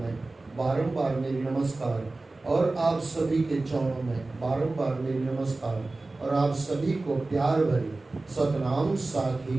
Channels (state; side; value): quieter; left; 3.2 dB